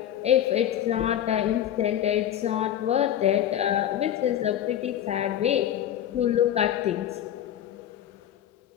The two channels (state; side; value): quieter; right; 10.9 dB